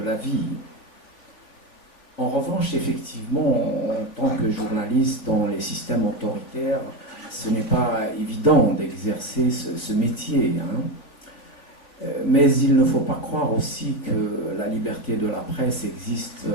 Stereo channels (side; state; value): right; late; 3.4 ms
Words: la vie. En revanche, effectivement, en tant que journaliste dans les systèmes autoritaires, ce n'est pas évident d'exercer ce métier. Hein. Mais il ne faut pas croire aussi que la liberté de la presse existe